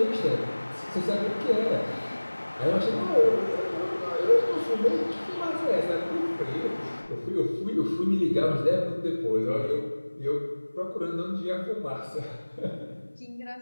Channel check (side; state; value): both; inverted; correlation -1.00